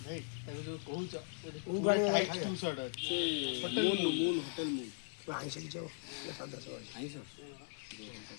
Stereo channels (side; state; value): right; silent; digital silence